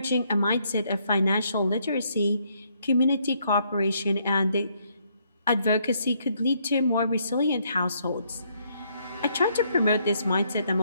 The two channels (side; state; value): both; inverted; correlation -0.71